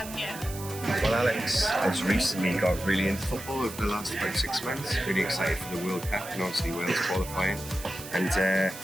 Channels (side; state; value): right; noise; hiss, 13 dB below the sound